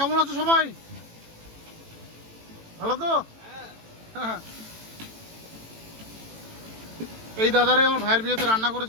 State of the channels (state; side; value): late; left; 18 ms